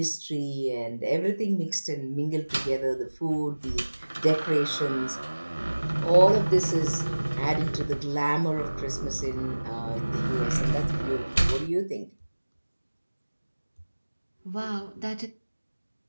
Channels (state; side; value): inverted; both; correlation -1.00